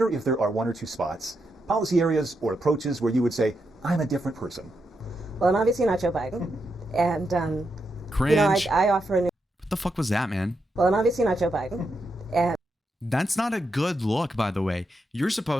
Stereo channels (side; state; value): both; normal; correlation 0.84